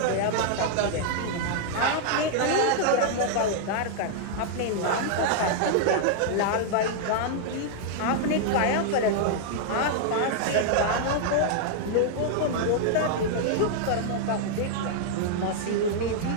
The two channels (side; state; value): both; different; correlation -0.01